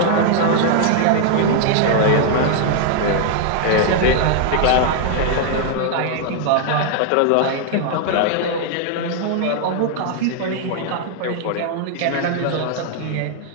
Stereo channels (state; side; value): different; both; correlation 0.00